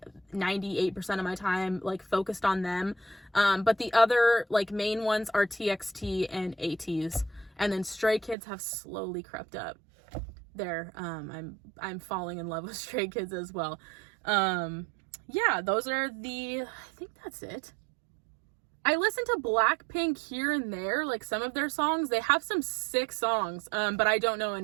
98% of my time like focused on them. But the other like main ones are TXT and ATEEZ. And then Stray Kids have slowly crept up there. I'm falling in love with Stray Kids as well. Yeah, those are I think that's it. I listen to Blackpink here and there, like some of their songs. They have some sick songs, but I don't know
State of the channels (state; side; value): drops out; left; at 8.3 s